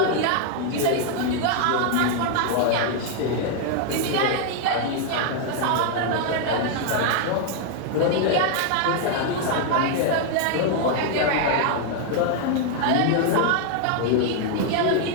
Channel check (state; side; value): different; both; correlation 0.00